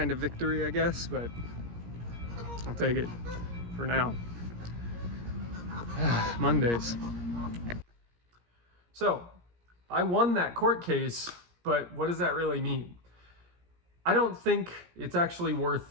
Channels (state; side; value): late; left; 17 ms